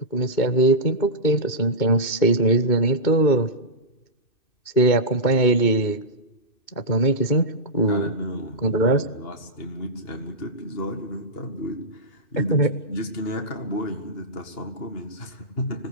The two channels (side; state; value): right; late; 2.6 ms